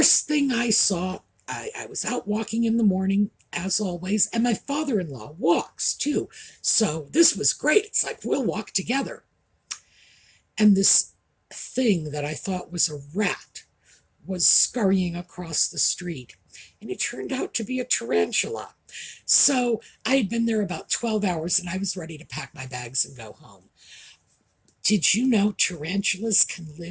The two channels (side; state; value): both; identical; correlation 1.00